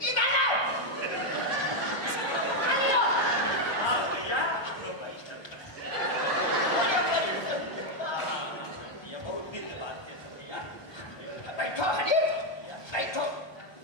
इधर आओ। पानी लो। हाँ भैया लो भाई। भैया बहुत दिन के बाद है भैया। बैठो हरी बैठो।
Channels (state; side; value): late; right; 1.2 ms